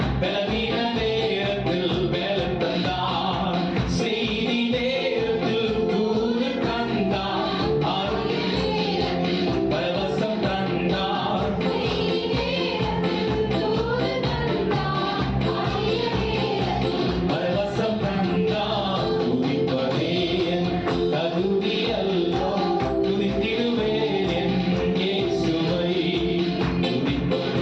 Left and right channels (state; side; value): identical; both; correlation 1.00